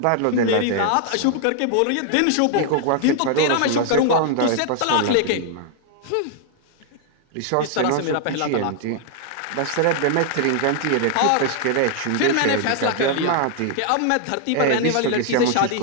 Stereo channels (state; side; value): different; both; correlation 0.00